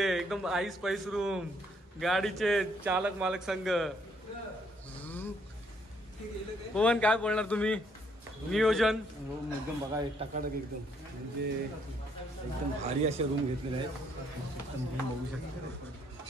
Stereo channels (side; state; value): both; normal; correlation 0.69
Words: एकदम आईस पैस रूम. गाडीचे चालक मालक संघ. पवन काय बोलणार तुम्ही, नियोजन. रूम एकदम बघा टकाटक एकदम, म्हणजे एकदम भारी असे रूम घेतलेले आहेत. एकदम तुम्ही बघू शकता